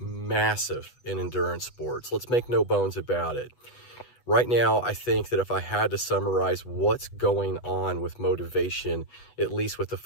in endurance sports. Let's make no bones about it. Right now, I think that if I had to summarize what's going on with motivation, at least with the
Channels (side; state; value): right; late; 8.1 ms